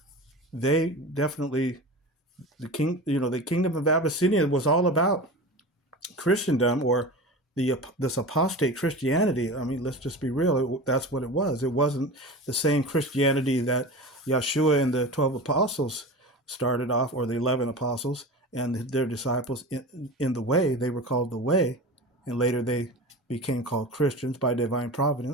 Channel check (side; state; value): both; normal; correlation 0.31